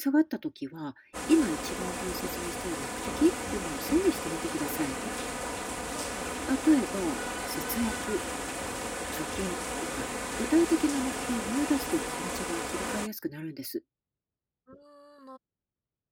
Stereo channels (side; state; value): both; identical; correlation 1.00